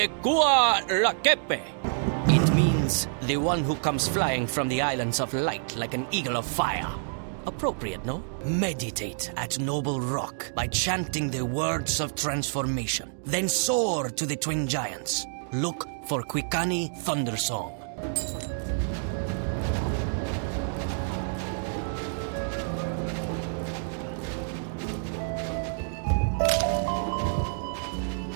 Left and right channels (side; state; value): left; silent; digital silence